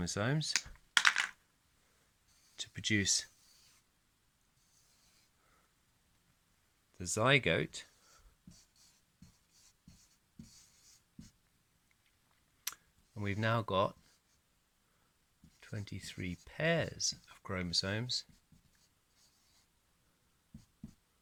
to produce the zygote, and we've now got 23 pairs of chromosomes,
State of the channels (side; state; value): both; identical; correlation 1.00